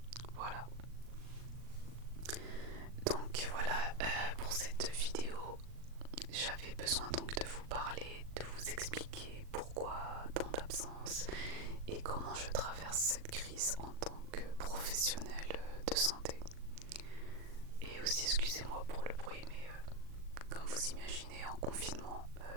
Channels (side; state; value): left; late; 39 ms